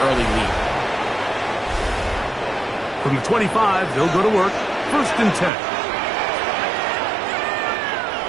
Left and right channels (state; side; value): drops out; left; at 5.5 s